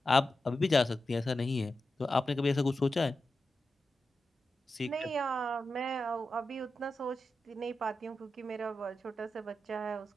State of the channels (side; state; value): both; normal; correlation 0.90